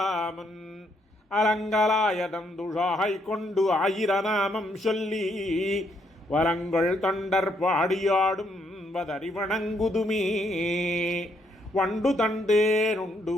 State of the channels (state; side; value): normal; both; correlation 0.73